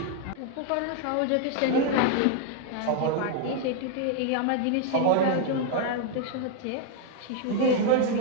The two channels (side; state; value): both; different; correlation 0.00